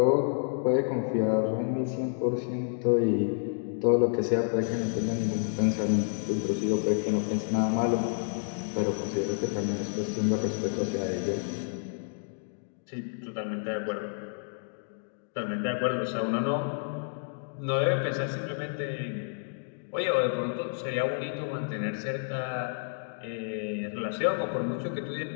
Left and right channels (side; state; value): right; silent; digital silence